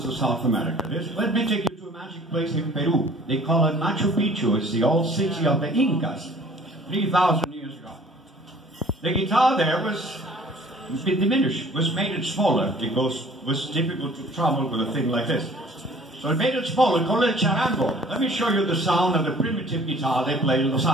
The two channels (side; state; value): both; normal; correlation 0.52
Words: of South America. Let me take you to a magic place in Peru. They call it Machu Picchu. It's the old city of the Incas, 3,000 years ago. The guitar there was a bit diminished, was made it smaller because it was difficult to travel with a thing like this. So it made it smaller, called it charango. Let me show you the sound of the primitive guitar they play in Los